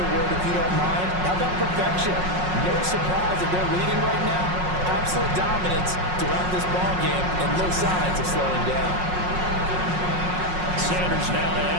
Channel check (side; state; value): left; late; 5.5 ms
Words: word if you don't mind. How about perfection? No surprise that they're leading right now. Absolute dominance throughout this ball game and no signs of slowing down. Sanders now to